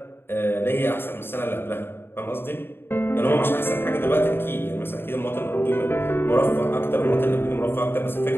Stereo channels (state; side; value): late; right; 0.11 ms